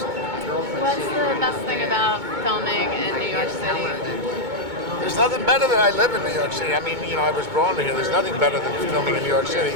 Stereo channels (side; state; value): left; late; 2.2 ms